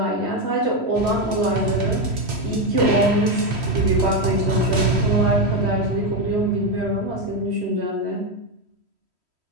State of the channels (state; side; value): late; left; 3.1 ms